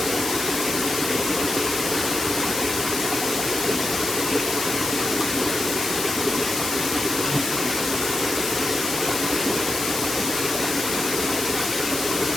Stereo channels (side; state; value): left; noise; hiss, 2 dB below the sound